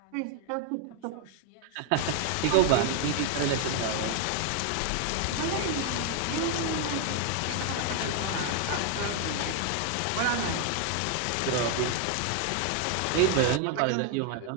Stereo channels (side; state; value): both; different; correlation 0.00